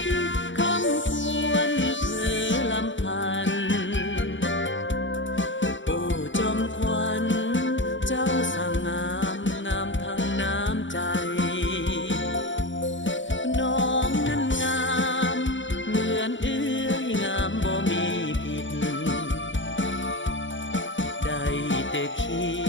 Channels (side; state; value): right; late; 0.55 ms